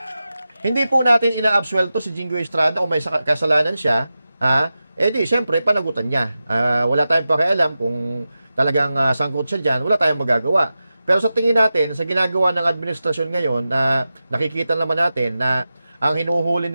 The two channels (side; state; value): both; inverted; correlation -0.93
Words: hindi po natin inaabsuelto si Jinggoy Estrada kung may kasalanan siya, di, syempre, panagutan niya. Wala tayong pakialam kung talagang sangkot siya dyan, wala tayong magagawa. Pero sa tingin natin, sa ginagawa ng administrasyon ngayon, nakikita naman natin na ang hinuhuli